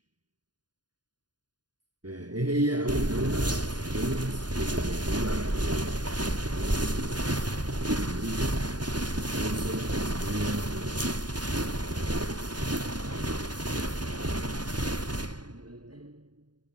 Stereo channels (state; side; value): late; left; 0.70 ms